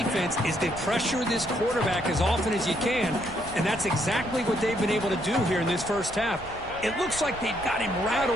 is to pressure this quarterback as often as you can, and that's exactly what they've been able to do here in this first half. It looks like they've got him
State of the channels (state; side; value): noise; left; rumble, 17 dB below the sound